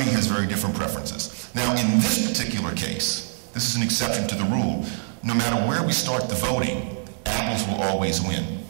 has very different preferences. Now, in this particular case, this is an exception to the rule. No matter where we start the voting, apples will always win.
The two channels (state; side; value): silent; left; 61 dB below the other